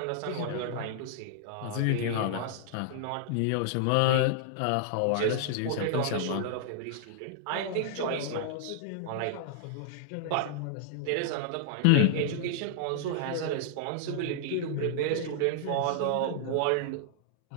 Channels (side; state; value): both; different; correlation -0.01